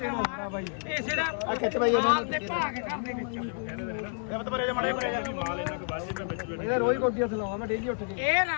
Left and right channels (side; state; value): right; silent; 58 dB below the other